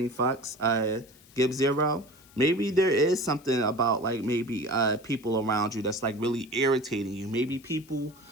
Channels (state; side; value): noise; left; hiss, 26 dB below the sound